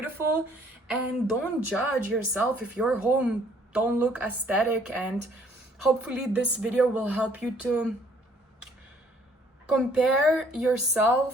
and don't judge yourself if your home don't look aesthetic. And hopefully this video will help you to compare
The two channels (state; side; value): normal; both; correlation 0.61